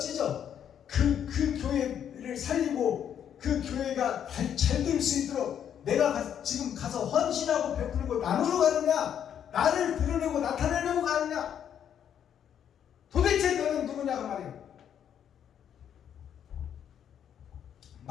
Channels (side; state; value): right; quieter; 9.1 dB